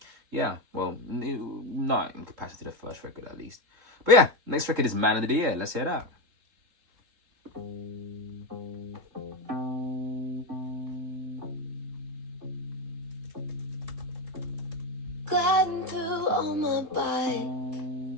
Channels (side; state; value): left; late; 3.6 ms